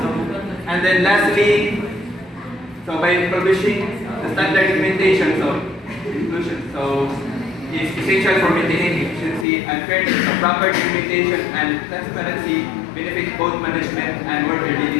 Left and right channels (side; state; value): right; drops out; at 9.5 s